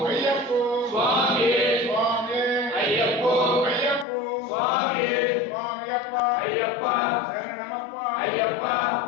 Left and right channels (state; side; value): drops out; right; at 4.0 s